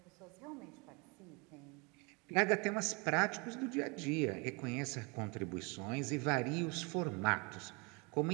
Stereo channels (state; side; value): quieter; left; 30.2 dB